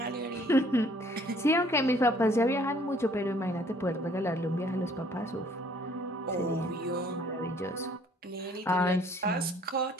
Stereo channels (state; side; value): normal; both; correlation 0.59